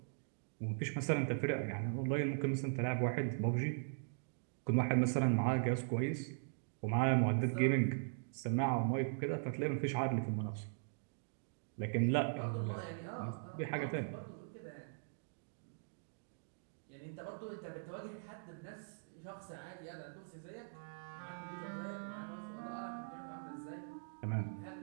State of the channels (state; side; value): silent; left; digital silence